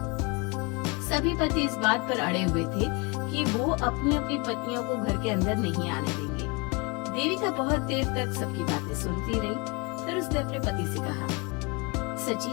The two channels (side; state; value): right; quieter; 29.3 dB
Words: सभी पति इस बात पर अड़े हुए थे कि वो अपनी अपनी पत्नियों को घर के अंदर नहीं आने देंगे। देविका बहुत देर तक सबकी बातें सुनती रही। फिर उसने अपने पति से कहा,